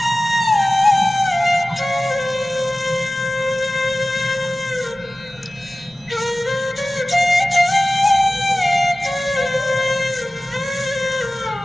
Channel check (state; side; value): noise; left; rumble, 29 dB below the sound